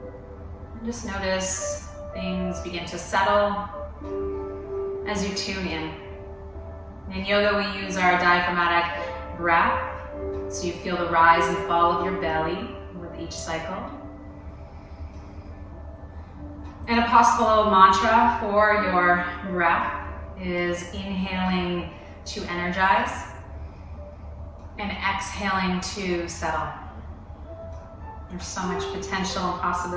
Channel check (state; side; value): identical; both; correlation 1.00